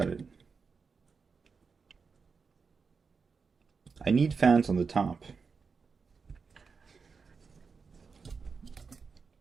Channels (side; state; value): left; quieter; 5.2 dB